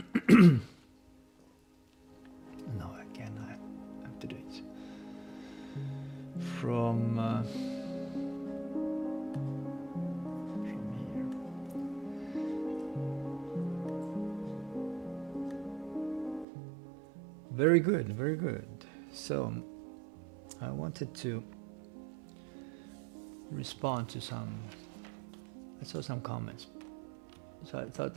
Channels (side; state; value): left; drops out; at 16.4 s